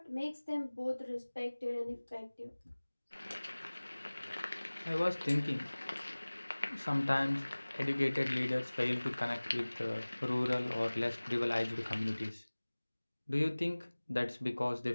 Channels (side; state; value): both; inverted; correlation -1.00